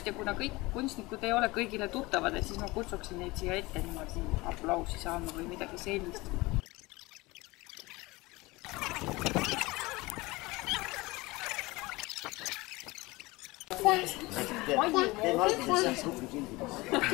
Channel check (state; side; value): quieter; right; 22.1 dB